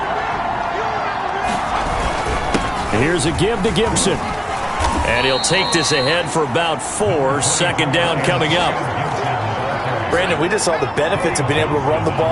Here's a give to Gibson. And he'll take this ahead for about 4. 2nd down coming up. Brandon, we just saw the benefits of being able to run the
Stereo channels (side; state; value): both; identical; correlation 1.00